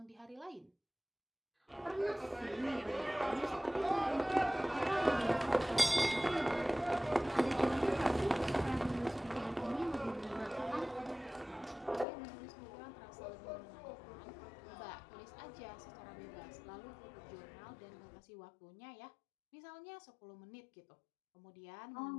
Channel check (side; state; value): right; drops out; at 12.1 s